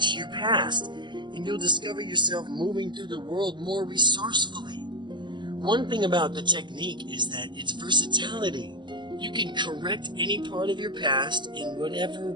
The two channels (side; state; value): left; late; 0.22 ms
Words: your past. and you'll discover yourself moving through the world more resourcefully. One thing about the technique is that its versatility. You can correct any part of your past in whatever